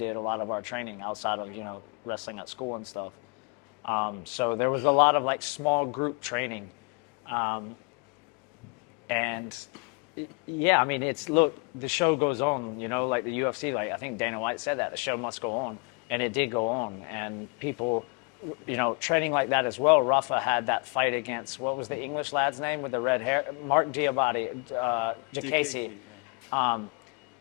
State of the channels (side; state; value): right; quieter; 34.6 dB